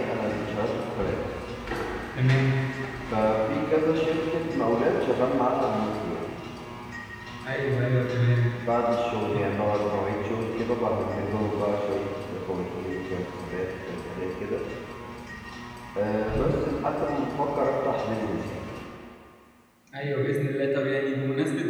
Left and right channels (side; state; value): both; identical; correlation 1.00